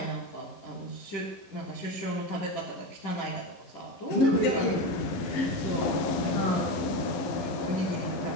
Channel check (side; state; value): right; late; 11 ms